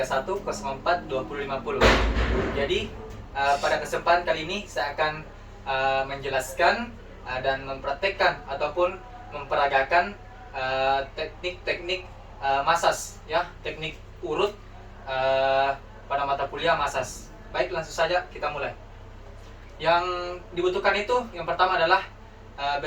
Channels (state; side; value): identical; both; correlation 1.00